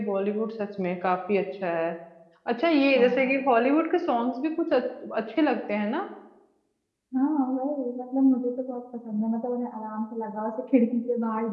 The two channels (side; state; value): both; identical; correlation 1.00